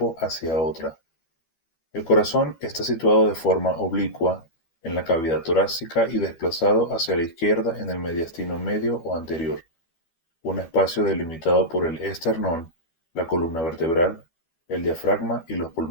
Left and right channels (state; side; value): late; right; 12 ms